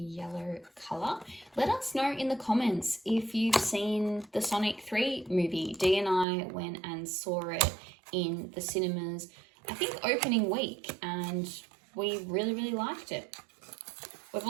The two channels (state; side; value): drops out; left; at 6.2 s